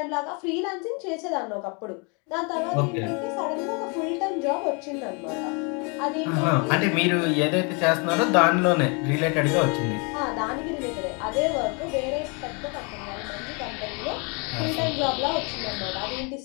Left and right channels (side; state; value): right; quieter; 33.3 dB